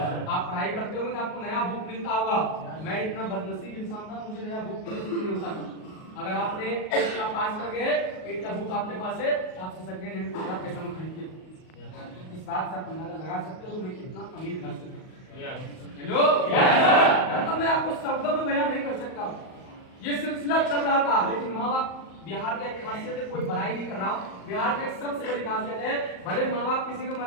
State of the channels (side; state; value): right; late; 38 ms